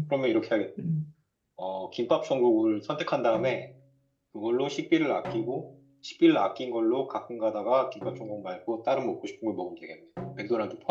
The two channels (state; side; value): identical; both; correlation 1.00